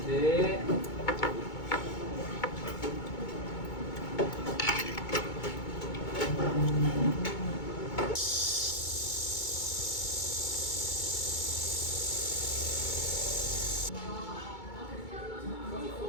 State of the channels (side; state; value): right; late; 2.2 ms